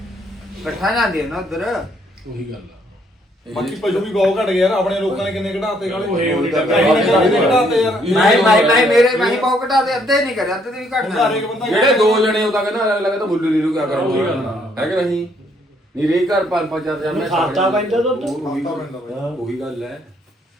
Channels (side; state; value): both; normal; correlation 0.68